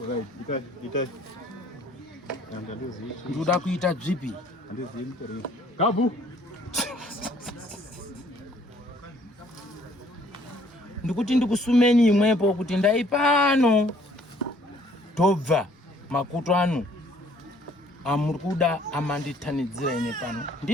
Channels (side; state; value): both; normal; correlation 0.60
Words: ndoda kuita dzipi gabu ndikuti ndikusumeni imwepo kuti ndaipano tobva makuto anu amuri kuda amanditanidzira ine pano